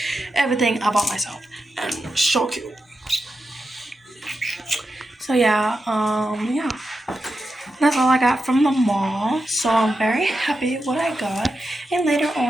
Everything I bought myself. And so cute. So yeah, that's all I got from the mall. So I'm very happy with what I got. And later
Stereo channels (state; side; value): normal; both; correlation 0.88